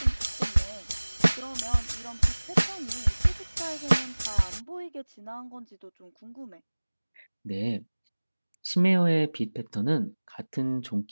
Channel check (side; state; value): both; inverted; correlation -1.00